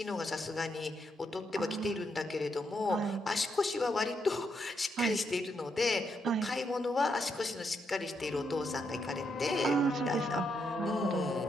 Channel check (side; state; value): both; normal; correlation 0.79